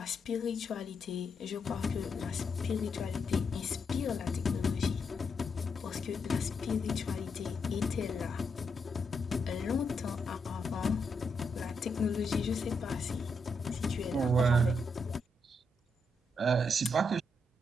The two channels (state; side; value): normal; both; correlation 0.80